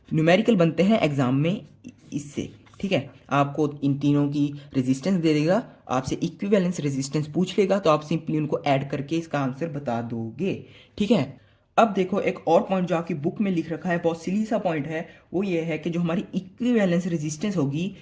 न्यूमेरिकल बनते हैं एग्जाम में इससे। ठीक है, आपको इन तीनों की रेजिस्टेंस दे देगा, आपसे इक्विवेलेंस रेजिस्टेंस पूछ लेगा, तो आप सिंपली उनको ऐड करके इसका आंसर बता दोगे। ठीक है, अब देखो एक और पॉइंट जो आपकी बुक में लिख रखा है, बहुत सिली सा पॉइंट है, वो ये है कि जो हमारी इक्विवेलेंस रेजिस्टेंस होगी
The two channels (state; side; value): identical; both; correlation 1.00